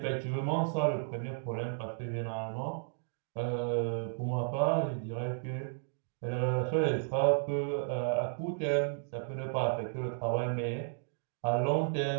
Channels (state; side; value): silent; left; digital silence